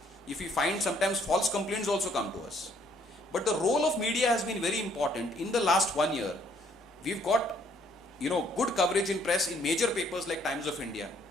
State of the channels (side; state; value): both; normal; correlation 0.65